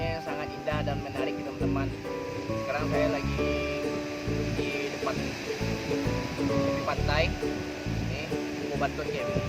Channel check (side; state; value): both; identical; correlation 1.00